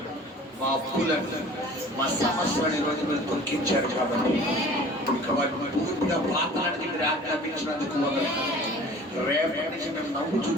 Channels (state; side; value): normal; both; correlation 0.46